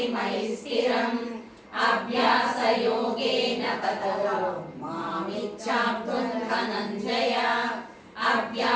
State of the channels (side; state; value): both; identical; correlation 1.00